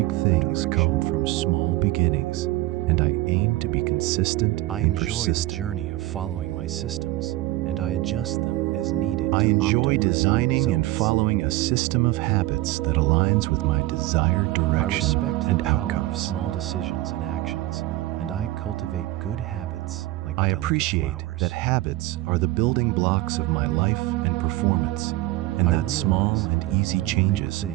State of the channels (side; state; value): left; quieter; 17.8 dB